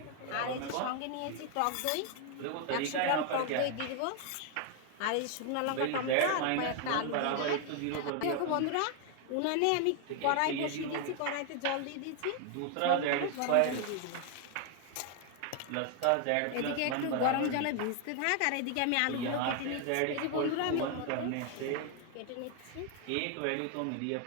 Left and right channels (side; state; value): both; different; correlation 0.01